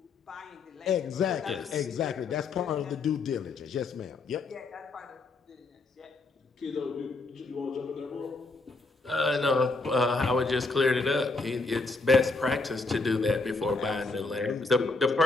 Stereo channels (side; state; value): right; quieter; 3.6 dB